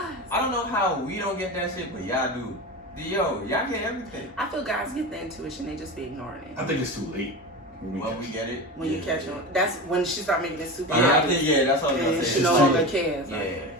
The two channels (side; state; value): both; normal; correlation 0.26